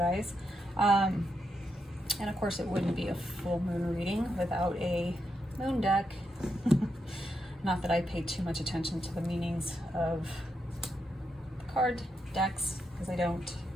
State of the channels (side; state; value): both; normal; correlation 0.83